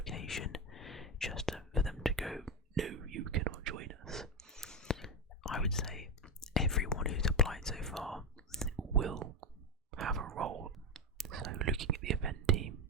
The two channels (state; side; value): normal; both; correlation 0.12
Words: just for them to go, no, you cannot join us. I would say everyone who's applied so far will have a role. So looking at the event team,